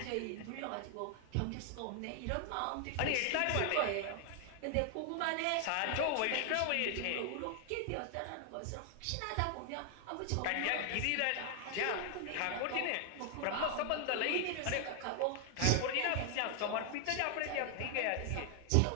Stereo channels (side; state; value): both; different; correlation 0.00